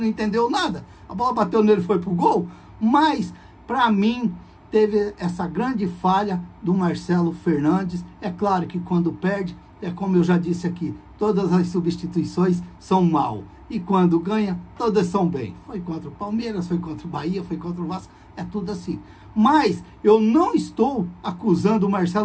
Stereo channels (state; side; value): identical; both; correlation 1.00